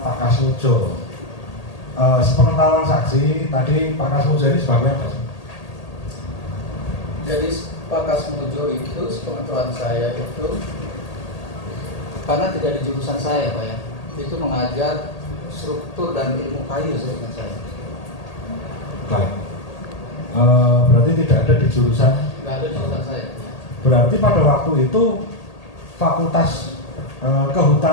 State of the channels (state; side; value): late; right; 1.8 ms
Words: Pak Kasmujo. Sepengetahuan saksi tadi Pak Kasmujo ini sebagai apa? Jadi Pak Kasmujo itu sepengetahuan saya itu karena tidak di jurusan saya Pak ya, itu mengajar struktur dan ilmu kayu seingat saya. Baik. Berarti tidak ada di jurusan? Tidak ada di jurusan saya. Berarti pada waktu itu Fakultas